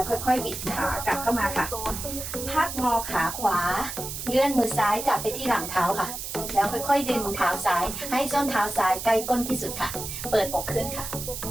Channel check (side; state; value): right; noise; hiss, 7 dB below the sound